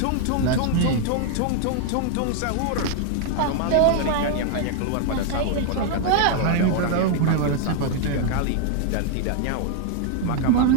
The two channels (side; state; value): both; different; correlation 0.00